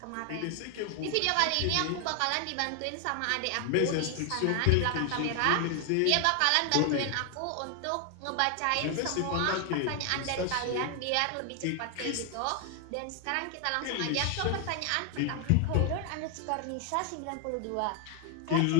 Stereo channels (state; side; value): different; both; correlation 0.00